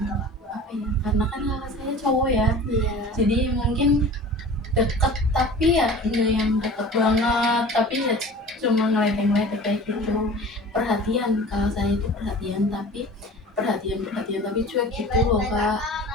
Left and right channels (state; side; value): normal; both; correlation 0.40